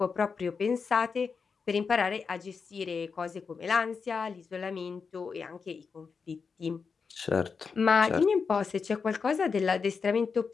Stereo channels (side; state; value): right; quieter; 5.4 dB